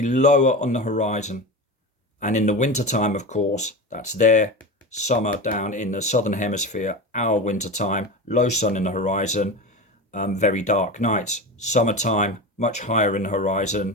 lower on the horizon. And in the wintertime, of course, that's their summer down in the southern hemisphere, our wintertime, low sun in the horizon, very dark nights. Summertime, much higher in the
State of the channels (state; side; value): normal; both; correlation 0.25